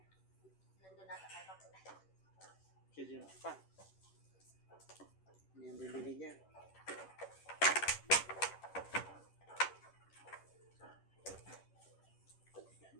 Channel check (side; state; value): right; late; 10 ms